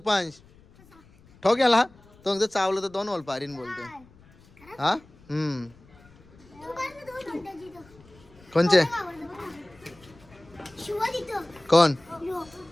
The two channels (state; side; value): noise; left; rumble, 26 dB below the sound